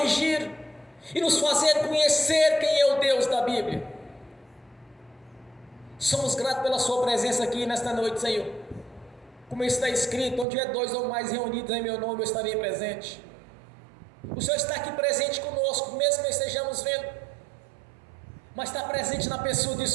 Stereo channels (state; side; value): drops out; left; at 10.5 s